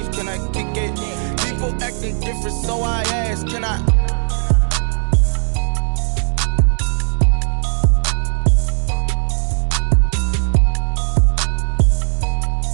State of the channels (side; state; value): left; silent; digital silence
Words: can I kick it? People acting different, so I ask, can I?